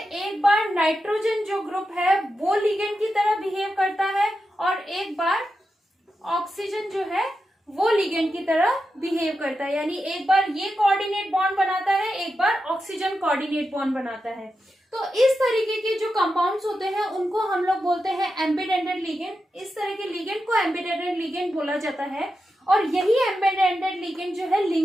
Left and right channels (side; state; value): both; normal; correlation 0.89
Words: एक बार नाइट्रोजन जो ग्रुप है वो लिगेंड की तरह बिहेव करता है और एक बार ऑक्सीजन जो है वो लिगेंड की तरह बिहेव करता है, यानी एक बार ये कोऑर्डिनेट बॉन्ड बनाता है, एक बार ऑक्सीजन कोऑर्डिनेट बॉन्ड बनाता है। तो इस तरीके के जो कंपाउंड्स होते हैं उनको हम लोग बोलते हैं एम्बीडेंटेड लिगेंड। इस तरह के लिगेंड को एम्बीडेंटेड लिगेंड बोला जाता है और यही एम्बीडेंटेड लिगेंड जो है